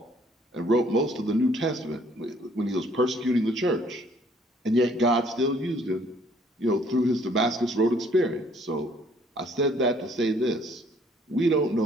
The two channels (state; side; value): normal; both; correlation 0.61